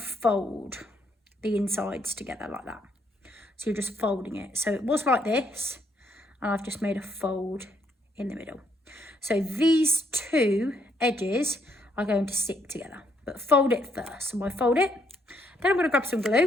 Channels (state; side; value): normal; both; correlation 0.72